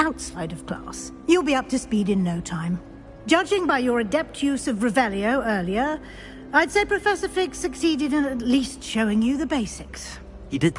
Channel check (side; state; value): both; identical; correlation 1.00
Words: of class. You'll be up to speed in no time. Judging by your adept use of Revelio earlier, I'd say Professor Fig succeeded in at least showing you the basics. He did,